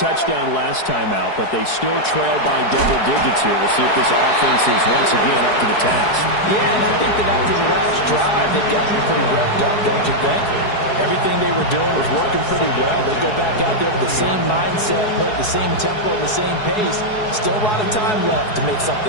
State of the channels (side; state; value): right; late; 4.7 ms